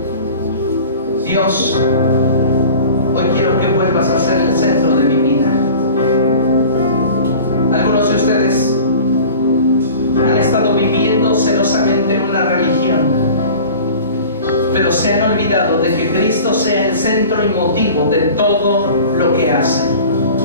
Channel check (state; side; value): inverted; both; correlation -0.41